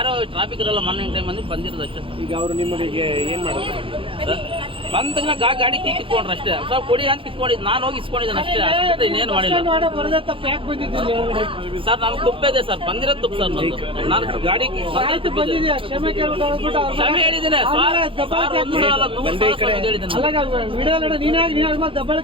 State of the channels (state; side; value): late; left; 0.25 ms